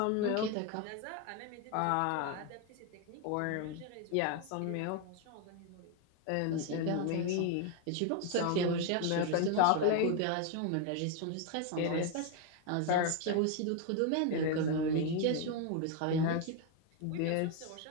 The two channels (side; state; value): both; different; correlation 0.01